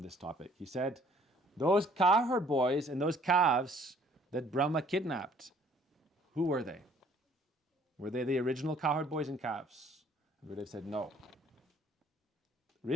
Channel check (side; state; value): both; normal; correlation 0.59